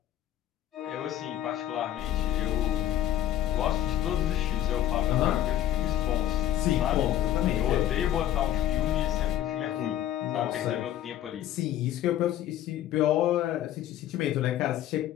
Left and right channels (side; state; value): right; quieter; 12.1 dB